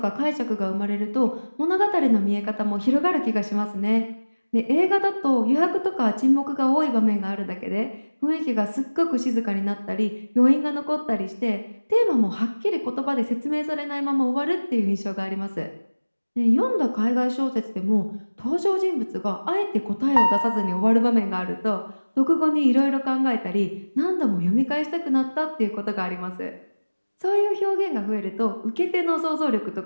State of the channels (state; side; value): inverted; both; correlation -1.00